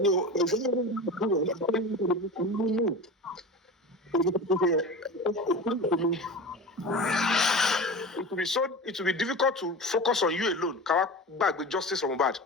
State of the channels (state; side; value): normal; both; correlation 0.31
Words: It will be difficult to focus on you alone. Ká gbàgbé justice for Mohbad.